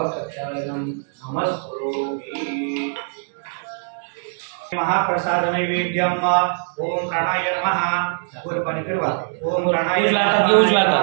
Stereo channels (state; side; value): silent; left; 64 dB below the other